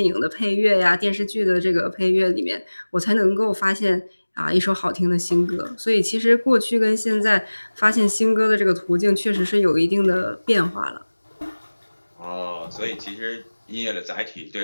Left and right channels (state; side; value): inverted; both; correlation -1.00